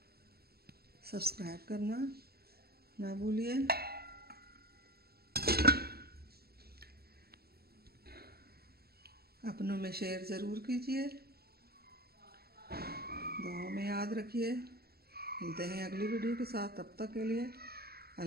सब्सक्राइब करना ना भूलिए। अपनों में शेयर ज़रूर कीजिए। दुआओं में याद रखिए। मिलते हैं अगली वीडियो के साथ। तब तक के लिए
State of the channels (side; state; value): left; late; 0.46 ms